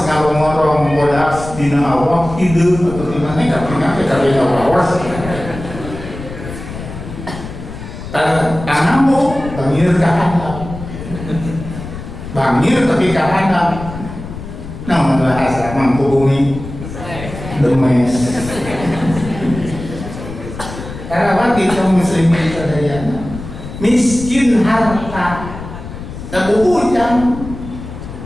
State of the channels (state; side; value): noise; left; rumble, 11 dB below the sound